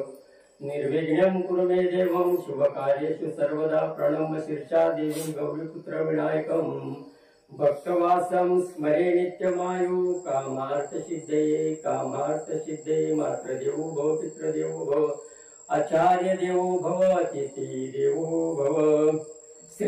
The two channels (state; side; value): identical; both; correlation 1.00